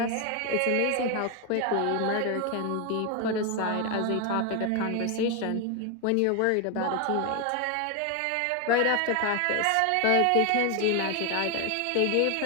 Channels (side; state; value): both; different; correlation 0.01